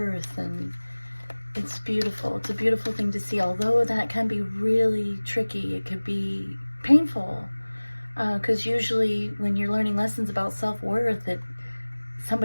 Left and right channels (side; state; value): both; inverted; correlation -1.00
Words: and it's beautiful. It's a beautiful thing to see, although that can be really tricky. It could be painful, because usually when you're learning lessons about self-worth,